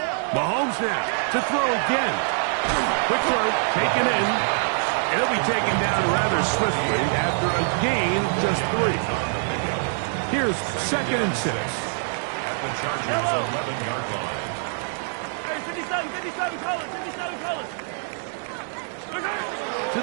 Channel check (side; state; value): left; silent; 58 dB below the other